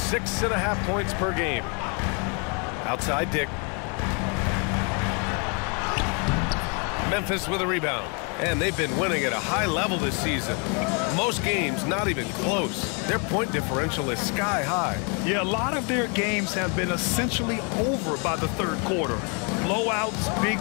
points per game. Outside Dick. Memphis with a rebound. And they've been winning at a high level this season. Most games not even close. Their point differential is sky high. Yeah, a lot of their games have been essentially over by the third quarter. Blowouts, big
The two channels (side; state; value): right; quieter; 35.6 dB